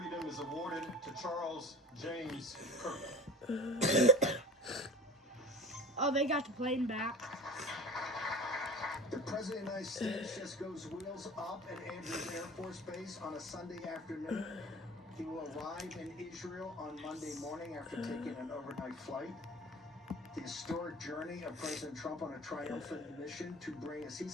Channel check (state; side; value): normal; both; correlation 0.38